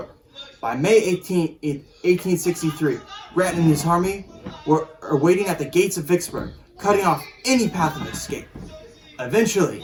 By May 18, 1863, Grant and his army were waiting at the gates of Vicksburg, cutting off any path of escape. Eventually,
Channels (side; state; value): both; identical; correlation 1.00